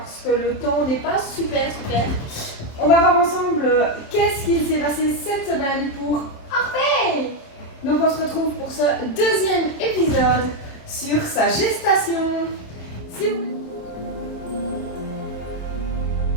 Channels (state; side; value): late; right; 27 ms